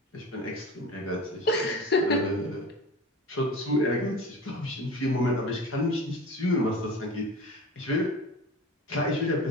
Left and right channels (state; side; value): normal; both; correlation 0.35